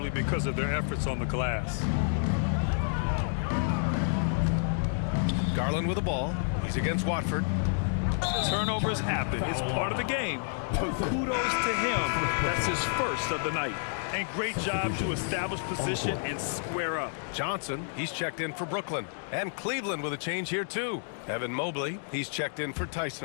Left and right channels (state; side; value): silent; right; digital silence